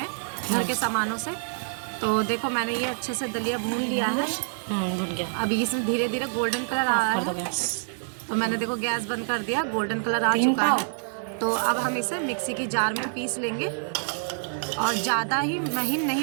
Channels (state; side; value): silent; left; 60 dB below the other